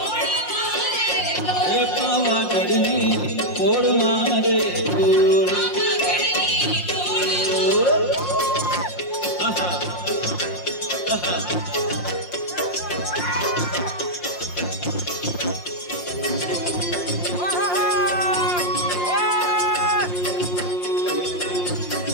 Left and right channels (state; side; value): late; right; 5.6 ms